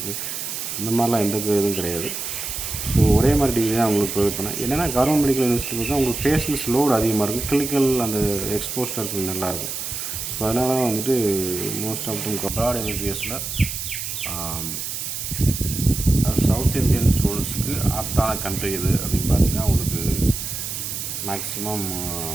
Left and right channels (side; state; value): right; noise; hiss, 5 dB below the sound